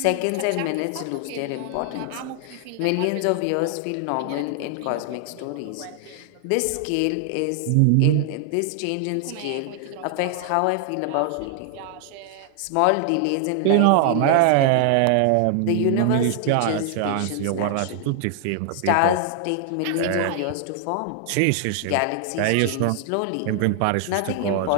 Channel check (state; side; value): different; both; correlation 0.00